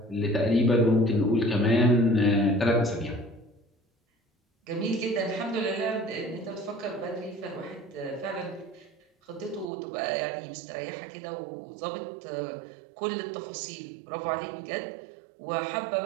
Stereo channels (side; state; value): left; drops out; at 9.7 s